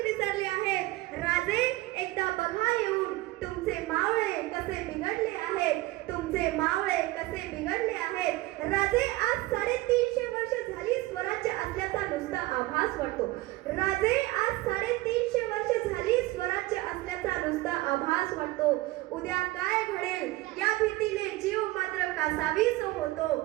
विसरली आहेत. राजे एकदा बघा येऊन, तुमचे मावळे कसे बिघडले आहेत. तुमचे मावळे कसे बिघडले आहेत. राजे आज 350 वर्ष झाली स्वराज्य असल्याचा नुसता आभास वाटतो. राजे आज 350 वर्ष झाली स्वराज्य असल्याचा नुसता आभास वाटतो. उद्या काय घडेल या भीतीने जीव मात्र कासावीस होतो.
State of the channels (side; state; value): left; quieter; 19.3 dB